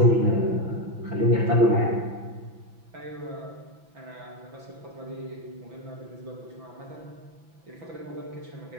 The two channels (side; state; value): left; late; 6.0 ms